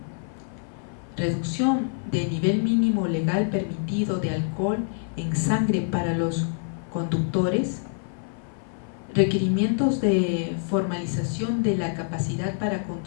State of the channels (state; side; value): silent; right; 55 dB below the other